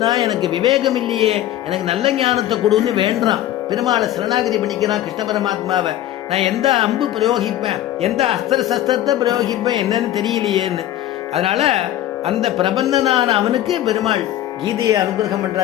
எனக்கு விவேகம் இல்லையே, எனக்கு நல்ல ஞானத்தை கொடுன்னு வேண்டான். பெருமாளை சரணாகதி பண்ணிக்கிறான் கிருஷ்ண பரமாத்மாவை. நான் எந்த அம்பு பிரயோகிப்பேன், எந்த அஸ்திர சஸ்திரத்தை பிரயோகிப்பேன் என்னன்னு தெரியலையேன்னு. அதனால அந்த பிரபந்தனான அவனுக்கு பெருமாள் கீதையை அனுகிரகம்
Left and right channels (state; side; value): quieter; right; 13.1 dB